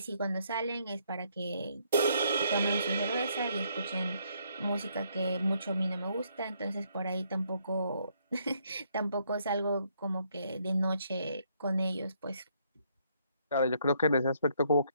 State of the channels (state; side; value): inverted; both; correlation -0.70